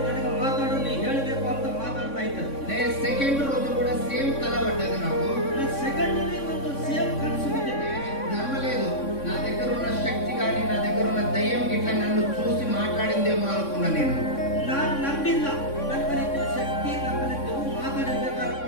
ನನಗೆ ಮಾತಾಡು, ನೀ ಹೇಳಬೇಕು ಅಂತ ಮಾತಾಡ್ತಾ ಇದ್ದಾರೆ. నేను సెకండ్ రోజు కూడా సేమ్ కల పడ్డది నాకు. ಸೆಕೆಂಡ್ ಒಂದು ಸೇಮ್ ಕನಸು ಬಿದ್ದಿದೆ. నమ్మలేదు, నా దగ్గర ఉన్న శక్తి కానీ నా దగ్గర ఉన్న దయ్యం ఇట్లా నన్ను చూసి మాట్లాడిందేమో అనుకున్నా నేను. ನಾನು ನಂಬಿಲ್ಲ, ನನ್ನ ಬರೀ ಶಕ್ತಿ ನಮ್ಮ ಮಾತಾಡಿರ್ಬೇಕು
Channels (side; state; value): right; late; 3.6 ms